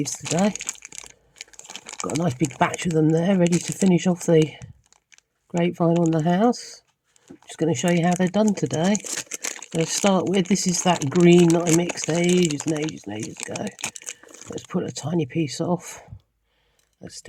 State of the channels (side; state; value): both; identical; correlation 1.00